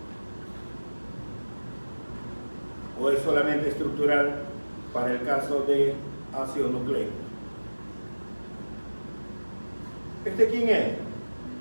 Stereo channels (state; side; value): inverted; both; correlation -1.00